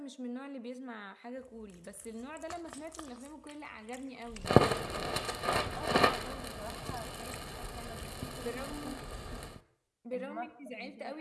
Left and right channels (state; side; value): identical; both; correlation 1.00